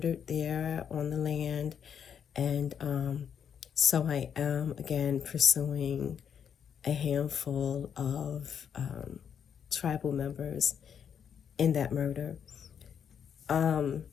there on the land. And so I am, again, pursuing a handful of tribal members in that murder. And,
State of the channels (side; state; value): right; quieter; 7.9 dB